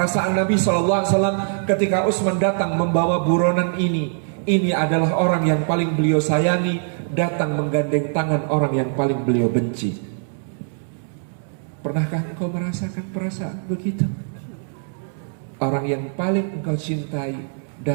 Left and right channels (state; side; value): silent; left; 64 dB below the other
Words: Nabi SAW ketika Utsman datang membawa buronan ini. Ini adalah orang yang paling beliau sayangi, datang menggandeng tangan orang yang paling beliau benci. Pernahkah engkau merasakan perasaan begitu? Orang yang paling engkau cintai